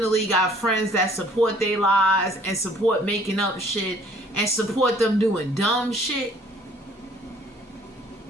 got friends that support their lies and support making up shit and support them doing dumb shit,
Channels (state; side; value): normal; both; correlation 0.57